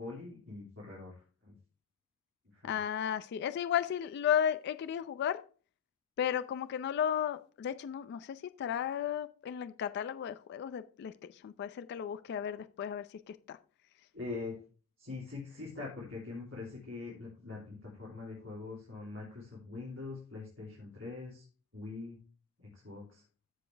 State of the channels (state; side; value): quieter; right; 7.9 dB